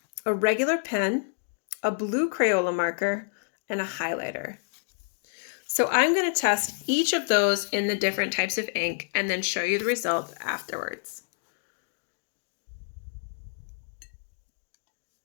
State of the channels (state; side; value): silent; right; digital silence